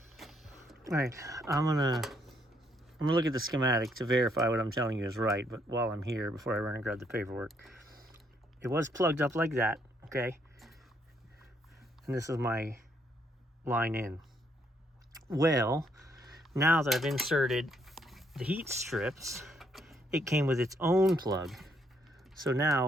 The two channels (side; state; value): both; normal; correlation 0.72